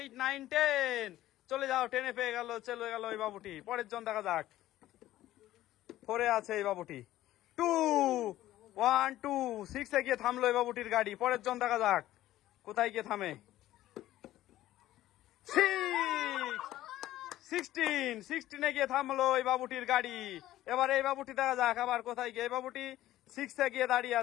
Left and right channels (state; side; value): quieter; right; 14.5 dB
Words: 9 10। চলে যাও, 10-এ পেয়ে গেল, চলে গেল এই বাবুটি। পরের জন দেখা যাক। 4-এ আছে এই বাবুটি। 2 1 2 6-এ গিয়ে থামলো এই বাবুটির গাড়ি। পরের জন দেখা যাক কোথায় গিয়ে থামে। 16-এ গিয়ে থামলো এই বাবুটির গাড়ি। এবার এই বাবুটি দেখা যাক আবার কোথায় গিয়ে। এই বাবুটি 6-এ গিয়ে দাঁড়িয়ে